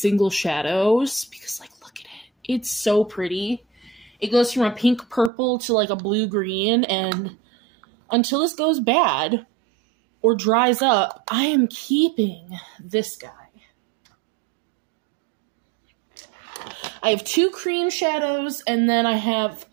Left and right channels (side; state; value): left; drops out; at 5.3 s